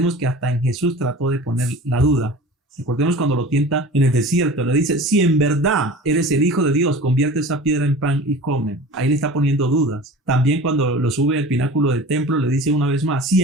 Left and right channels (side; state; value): both; normal; correlation 0.38